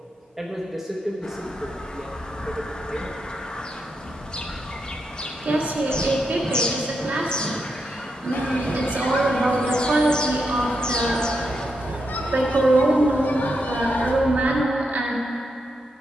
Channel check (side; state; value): both; normal; correlation 0.83